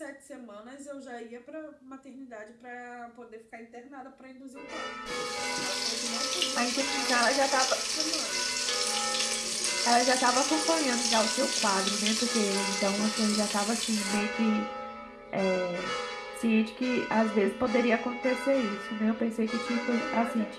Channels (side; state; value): both; identical; correlation 1.00